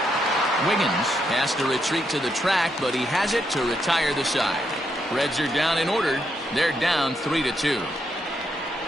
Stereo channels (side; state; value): left; noise; rumble, 29 dB below the sound